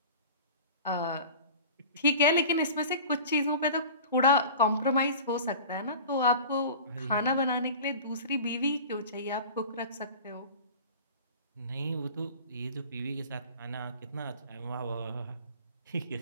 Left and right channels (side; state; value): both; inverted; correlation -0.39